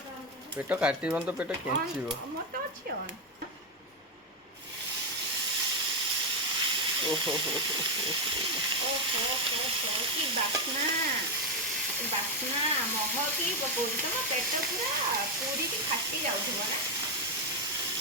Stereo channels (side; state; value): both; normal; correlation 0.06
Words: ପେଟ କାଟିବନି ତ ପେଟ କେଞ୍ଚିବ। ମୋର ତ ଅଛି ଅନ୍। ଓହୋ କି ବାସ୍ନା ବାସ୍ନା ମହକି ପକଉଛି। ତମ ପେଟ ପୁରା ପୁରିକି ଫାଟି ଯାଉଥିବ ନା